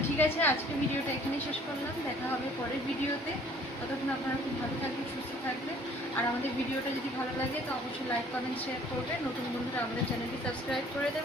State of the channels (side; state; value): both; normal; correlation 0.55